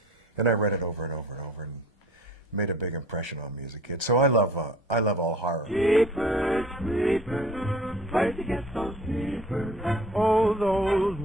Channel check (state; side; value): normal; both; correlation 0.48